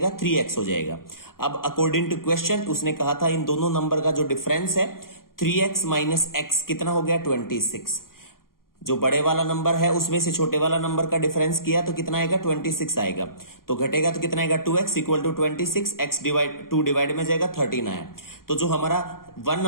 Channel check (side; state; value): right; late; 0.92 ms